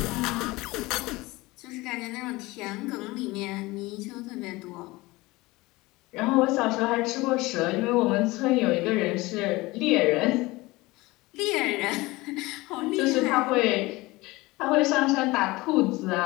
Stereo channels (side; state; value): right; quieter; 21.2 dB